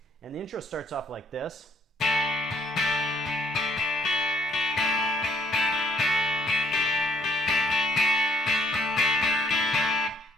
And the intro starts off like this.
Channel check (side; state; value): both; normal; correlation 0.67